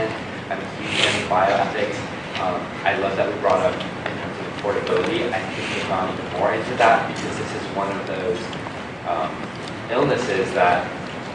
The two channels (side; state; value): right; noise; rumble, 29 dB below the sound